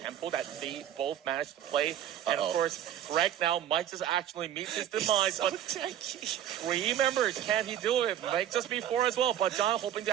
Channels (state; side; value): quieter; left; 10.9 dB